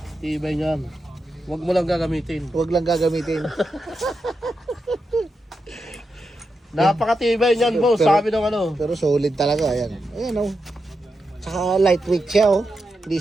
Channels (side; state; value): both; normal; correlation 0.87